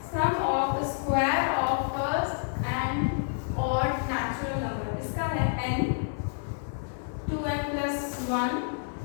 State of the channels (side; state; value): right; silent; digital silence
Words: Sum of square of first and odd natural number. इसका है n, 2n plus 1,